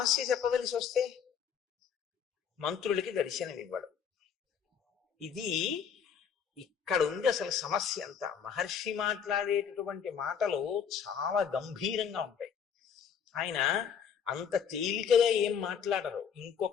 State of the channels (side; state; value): right; quieter; 7.5 dB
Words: చెప్పవలసి వస్తే మంత్రులకి దర్శనం ఇవ్వడు. ఇది ఇక్కడ ఉంది అసలు సమస్య అంతా. మహర్షి మాట్లాడేటటువంటి మాటలు చాలా గంభీరంగా ఉంటాయి. ఆయన అంత తేలికగా ఏం మాట్లాడరు.